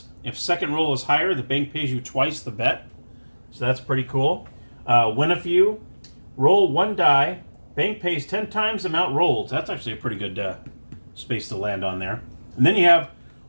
If second roll is higher, the bank pays you twice the bet. So that's pretty cool. Win a few. Roll 1 die. Bank pays 10 times the amount rolled. That's actually a pretty good space to land on there. And then you have,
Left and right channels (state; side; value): inverted; both; correlation -1.00